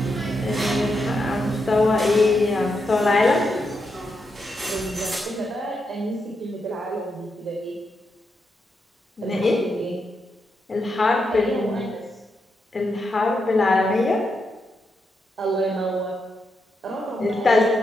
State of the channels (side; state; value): both; normal; correlation 0.83